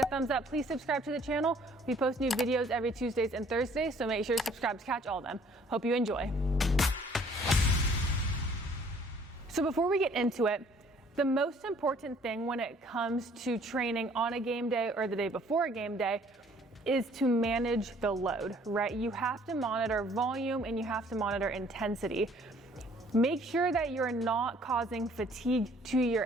a thumbs up. Please subscribe to the channel. We post new videos every Tuesdays and Thursdays, so make sure to subscribe to catch all of them. Hope you enjoy. So before we get into it, the most important thing when it comes to training on a game day or the day before a game day is to manage the load, right? You have to monitor volume and you have to monitor intensity. Make sure that you're not causing fatigue to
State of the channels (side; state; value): both; normal; correlation 0.58